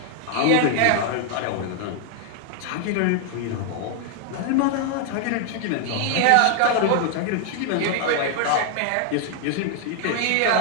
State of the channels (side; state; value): both; different; correlation 0.00